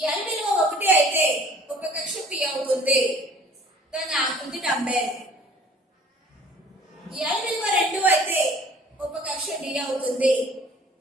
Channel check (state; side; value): normal; both; correlation 0.51